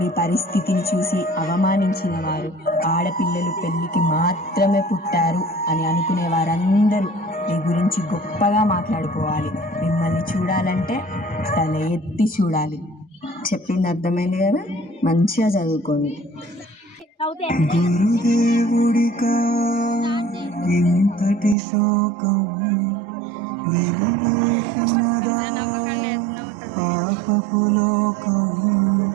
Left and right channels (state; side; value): drops out; left; at 21.6 s